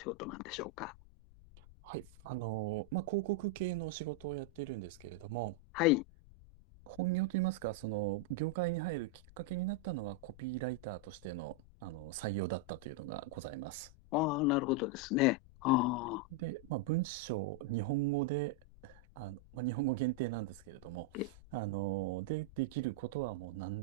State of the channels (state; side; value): noise; left; rumble, 21 dB below the sound